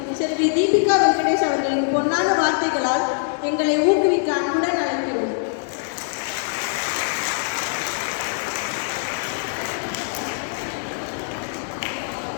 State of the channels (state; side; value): silent; right; digital silence